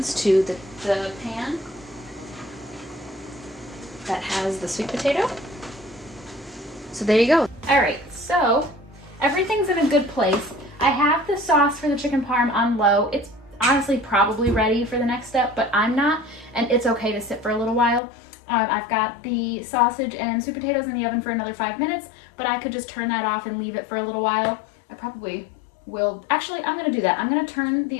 to the pan that has the sweet potato. So there you go. All right, so everything's in a good place. I have the sauce for the chicken parm on low. It's honestly probably ready for the next step, but I'm not, and it's okay to sit for a little while. I've got the sausage and sweet potatoes in the oven for another 5 minutes, but I could just turn that off and leave it for a little while. I probably will. Actually, I'm gonna do that. I'm gonna turn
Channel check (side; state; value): right; drops out; at 18.0 s